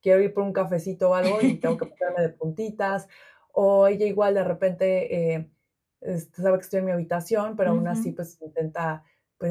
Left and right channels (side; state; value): both; identical; correlation 1.00